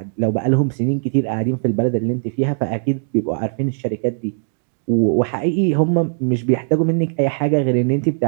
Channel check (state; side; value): silent; left; digital silence